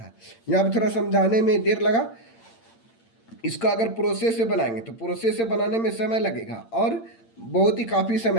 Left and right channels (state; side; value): late; right; 8.8 ms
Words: यहाँ पर थोड़ा समझाने में देर लगा। इसका अगर प्रोसेस से बनाएंगे तो प्रोसेस से बनाने में समय लगेगा और बहुत ही काफ़ी